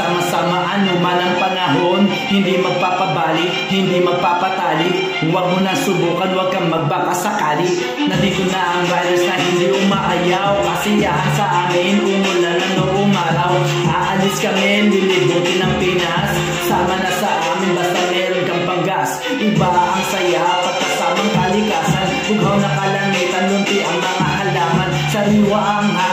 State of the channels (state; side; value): identical; both; correlation 1.00